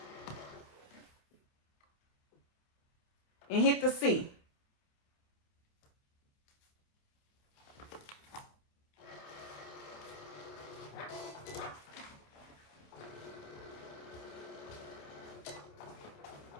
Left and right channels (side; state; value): right; late; 27 ms